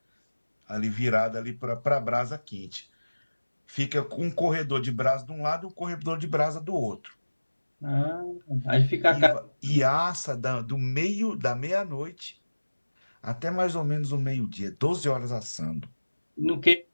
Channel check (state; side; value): inverted; both; correlation -1.00